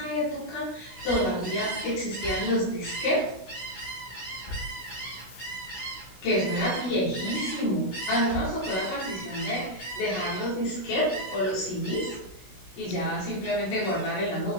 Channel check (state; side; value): late; right; 16 ms